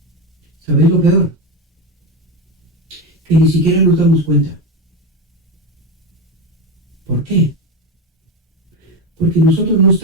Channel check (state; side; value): normal; both; correlation 0.16